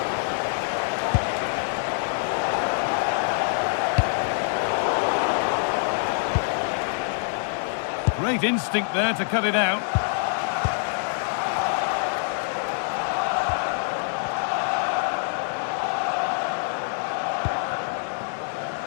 Great instinct there to cut it out.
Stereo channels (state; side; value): silent; right; digital silence